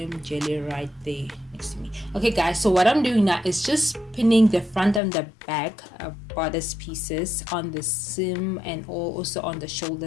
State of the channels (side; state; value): right; drops out; at 5.0 s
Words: jelly right there next to me. Okay, guys, so what I'm doing now is just pinning the front and the back bodice pieces on the seam and also on the